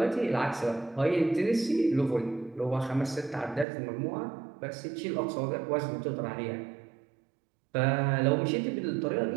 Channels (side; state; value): left; drops out; at 3.7 s